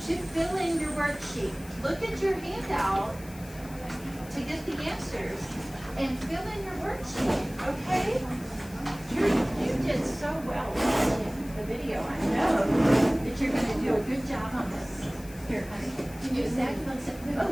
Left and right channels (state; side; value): noise; left; hiss, 19 dB below the sound